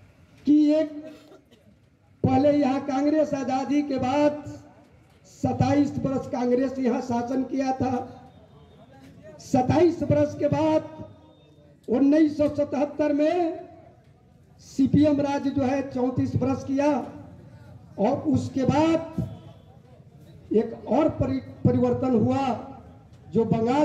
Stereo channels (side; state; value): both; identical; correlation 1.00